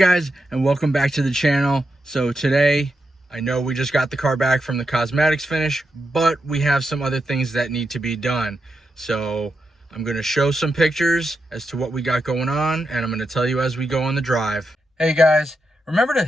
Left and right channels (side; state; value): both; normal; correlation 0.86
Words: and welcome back to the channel. So today, I know we just got the car back from the cosmetics finish, but we have some other things that need to be done. So I'm going to show some pictures as to what we got going on, and I'm going to tell you as we go on the drive. Hey guys, remember to